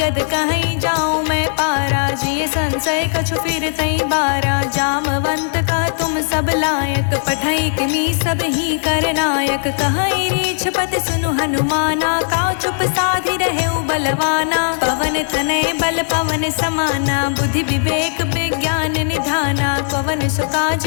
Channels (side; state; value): right; silent; digital silence